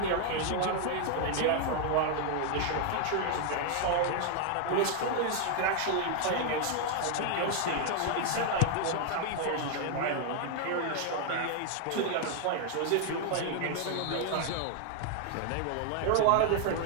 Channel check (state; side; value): different; both; correlation 0.00